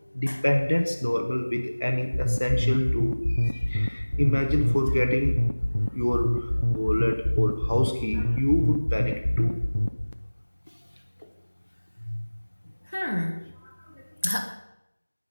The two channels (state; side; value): inverted; both; correlation -1.00